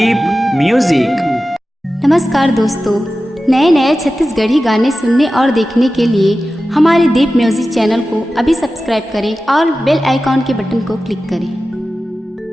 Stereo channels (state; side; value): normal; both; correlation 0.94